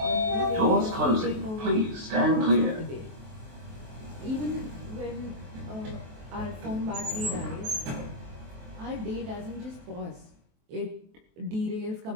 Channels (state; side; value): late; left; 23 ms